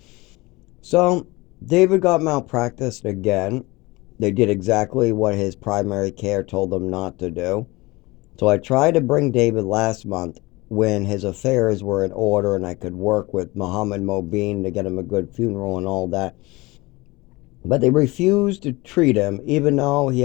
So, David got malpracticed again. They did exactly what his primary care told them not to do. So I tried to bring David last month when his affairs were in order and I could work with Mohammed Mobeen to get him a good funeral and all that. But they refused to treat him, even though he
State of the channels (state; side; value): quieter; right; 22.4 dB